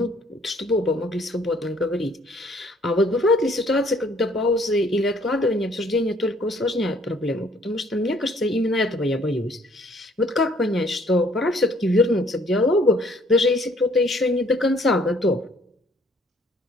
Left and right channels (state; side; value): normal; both; correlation 0.61